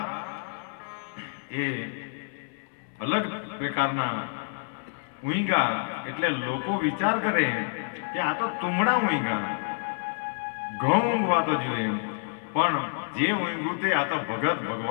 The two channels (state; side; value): silent; right; 59 dB below the other